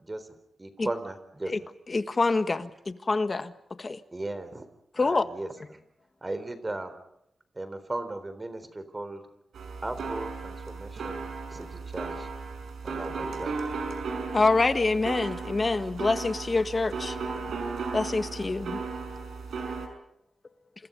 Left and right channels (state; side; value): normal; both; correlation 0.93